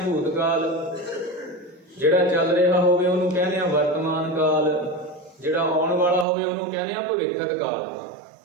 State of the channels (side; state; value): left; drops out; at 6.2 s